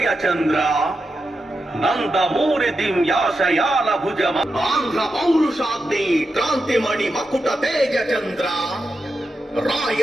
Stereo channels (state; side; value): normal; both; correlation 0.88